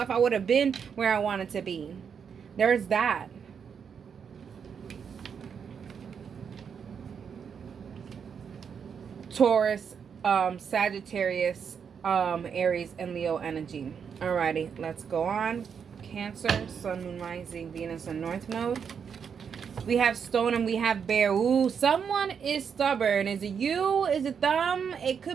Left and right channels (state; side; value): quieter; left; 6.9 dB